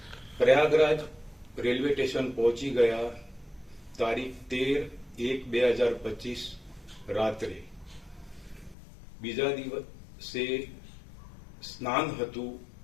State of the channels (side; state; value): right; drops out; at 8.8 s